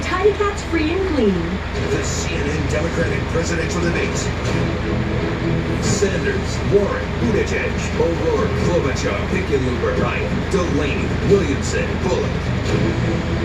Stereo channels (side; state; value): both; identical; correlation 1.00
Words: Cat's free and clean. The CNN Democratic presidential debates. Sanders, Warren, Buttigieg, O'Rourke, Klobuchar, Hickenlooper, Ryan, Delaney, Williamson, Bullock.